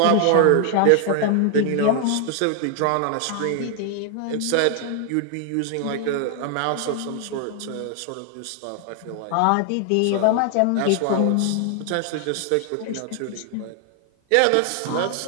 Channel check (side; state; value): both; different; correlation 0.00